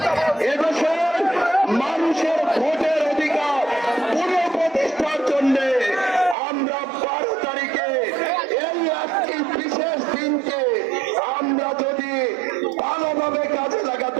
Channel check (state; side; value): drops out; left; at 6.4 s